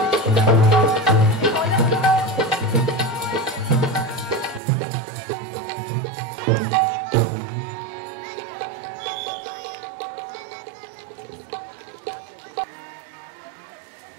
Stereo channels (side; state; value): left; drops out; at 4.6 s